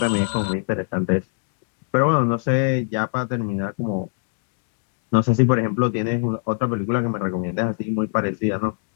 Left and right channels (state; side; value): silent; right; 63 dB below the other